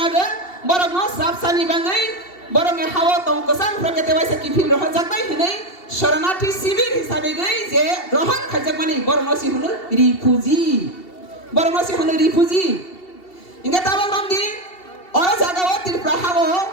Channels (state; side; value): late; right; 2.7 ms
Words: বরং সাবসানি বাঙ্গই বরং হাওয়া তং কসাং প্রগতে বাইসা কি ফিল রহ জাকবাই হেনে শরণার্থী শিবির হিসাবে গই যে গ্রহণ খাইজাক মানে বরং সি হলো রিফিউজি বরং সি হলো রিফিউজি ইংগা তাবাং রমদি অরা জাগাও ত্রিপুরা হাওয়া